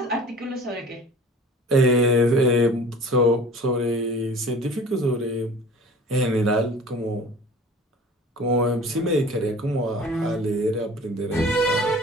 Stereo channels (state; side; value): normal; both; correlation 0.43